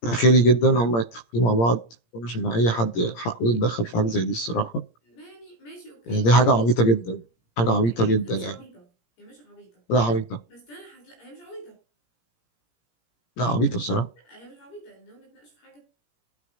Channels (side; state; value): right; late; 17 ms